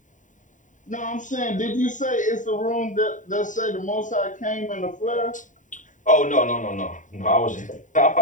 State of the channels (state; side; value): late; right; 0.37 ms